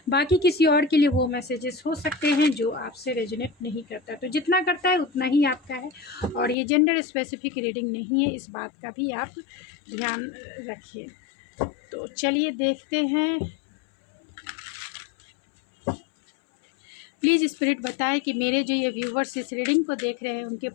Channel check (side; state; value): right; drops out; at 6.6 s